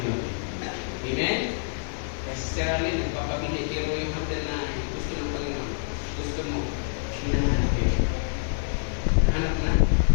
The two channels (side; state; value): right; silent; digital silence